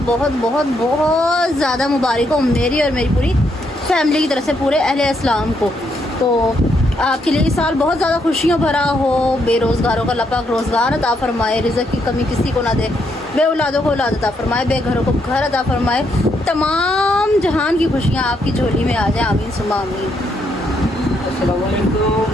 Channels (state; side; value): normal; both; correlation 0.76